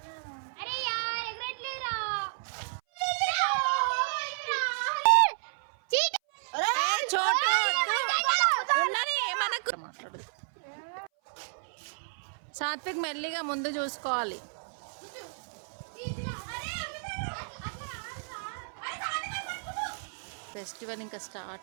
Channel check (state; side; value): silent; left; 57 dB below the other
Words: మాట్లాడదు. సాత్విక్ మెల్లిగా ముందు చూసుకోవాలి. ఫెస్టివల్ ఇంకా